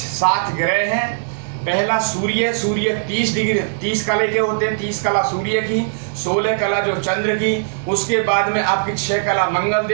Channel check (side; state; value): left; silent; 66 dB below the other